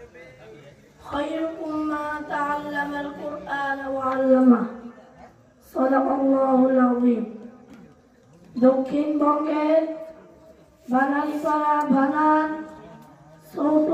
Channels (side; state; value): both; identical; correlation 1.00